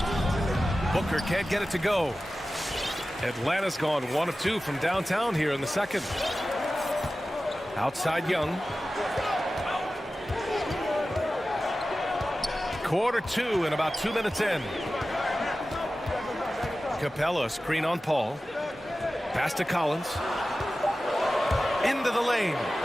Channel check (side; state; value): both; normal; correlation 0.95